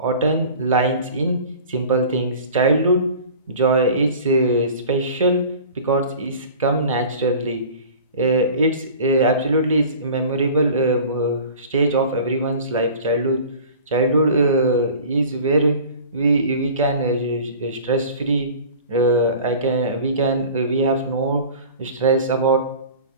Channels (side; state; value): both; inverted; correlation -0.42